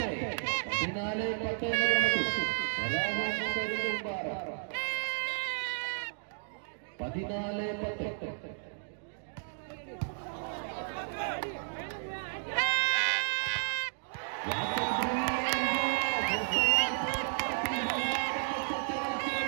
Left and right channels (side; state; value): left; silent; digital silence